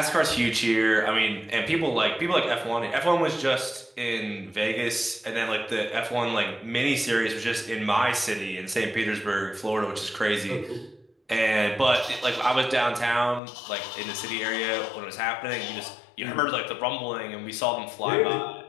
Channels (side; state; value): right; drops out; at 13.4 s